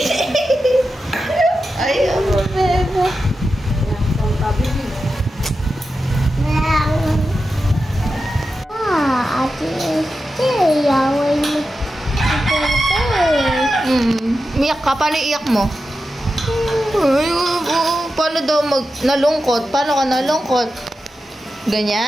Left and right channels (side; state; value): both; normal; correlation 0.91